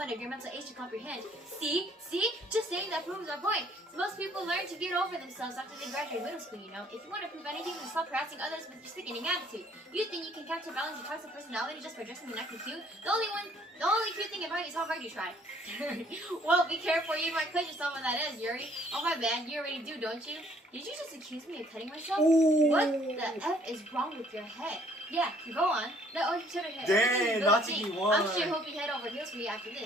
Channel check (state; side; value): normal; both; correlation 0.61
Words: of your mental age to comprehend. See? Just saying that proves our point. So most people learn to get over themselves after they graduate middle school, you know. If you want to prove anything, then stop harassing others with your sickening attitude. You think you can counterbalance your toxic personality just by dressing and acting cute? The only cute thing about you is how hard you try. Well, be careful, you might cut yourself when that is, Yuri. Oh my bad, you already do, don't you? Did you just accuse me of cutting myself? Ooh. What the F is wrong with your head? Yeah, go on. Let Orange Potato hit. Dang, Natsuki won. I'm sure he'll be head over heels for you after